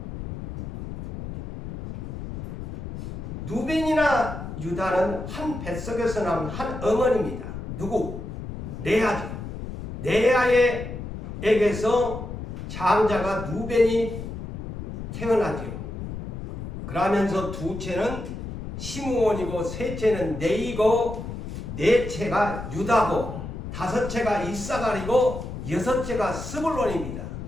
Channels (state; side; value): noise; left; rumble, 8 dB below the sound